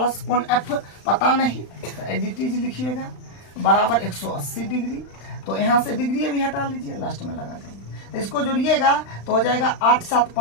कोण एफ पता नहीं, तो एडिटीज लिखिएगा बराबर 180 डिग्री। तो यहाँ से डिग्री भी हटा लीजिए, लास्ट में लगा देंगे। तो इसको जोड़िएगा तो हो जाएगा 8 7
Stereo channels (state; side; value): late; right; 35 ms